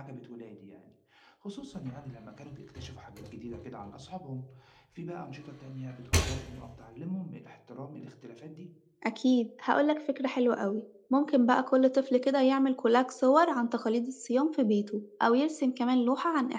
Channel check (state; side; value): identical; both; correlation 1.00